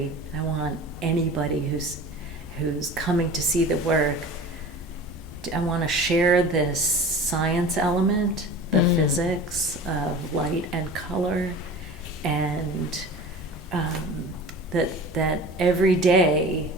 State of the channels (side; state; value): both; normal; correlation 0.38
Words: I want anybody who's coming to see the work, I want to share this science element, the physics of light and color, and that every day